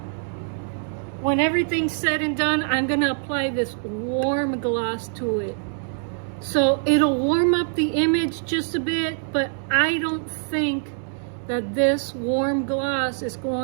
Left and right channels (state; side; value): silent; left; 62 dB below the other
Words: When everything's said and done, I'm gonna apply this warm gloss to it. So it'll warm up the image just a bit, but I don't think that this warm gloss is